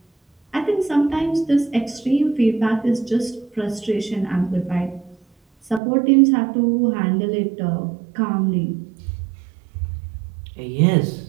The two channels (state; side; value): drops out; left; at 5.8 s